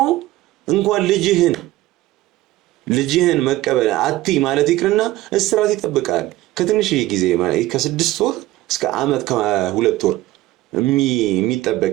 እንኳን ልጅህን መቀበል አትይ ማለት ይቅርና እስራት ይጠብቃል። ከትንሽ ጊዜ ማለት ከ6 ወር እስከ ዓመት ከ2 ወር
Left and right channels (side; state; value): left; quieter; 16.7 dB